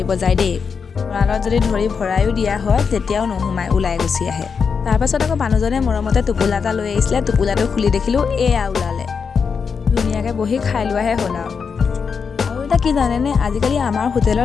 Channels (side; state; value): right; quieter; 5.9 dB